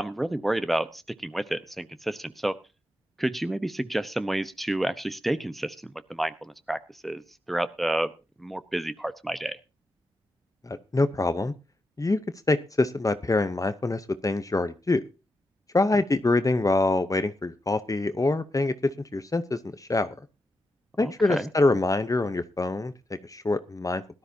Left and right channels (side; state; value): both; normal; correlation 0.86